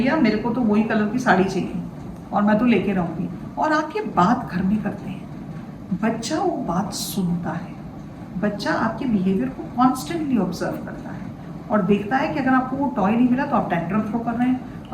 मेरे को तो वही कलर की साड़ी चाहिए और मैं तो लेके रहूँगी, और आप ये बात घर में करते हैं, बच्चा वो बात सुनता है, बच्चा आपके बिहेवियर को कॉन्स्टेंटली ऑब्जर्व करता है और देखता है कि अगर आपको वो टॉय नहीं मिला तो आप टेंट्रम थ्रो कर रहे हैं,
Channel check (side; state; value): both; identical; correlation 1.00